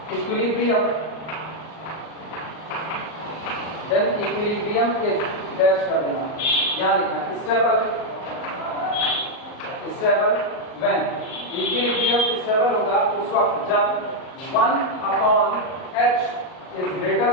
dash कर देना, यहाँ लिखना स्टेबल when इक्विलिब्रियम स्टेबल होगा उस वक्त जब 1 upon h is greater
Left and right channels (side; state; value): right; late; 38 ms